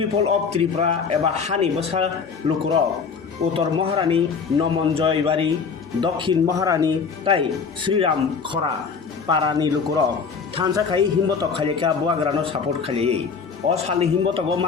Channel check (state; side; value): quieter; right; 5.6 dB